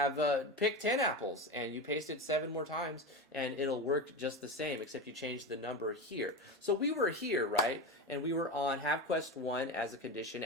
pick 10 apples and you paste it 7 more times and it'll work just the same, except you change the number here. So we were here, right? And we were on have quest 1 as a condition,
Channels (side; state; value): both; normal; correlation 0.21